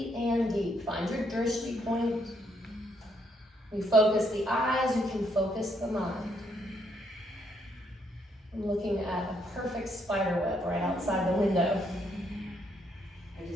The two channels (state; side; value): normal; both; correlation 0.73